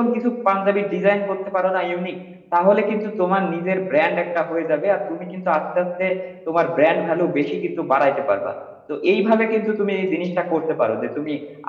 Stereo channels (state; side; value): identical; both; correlation 1.00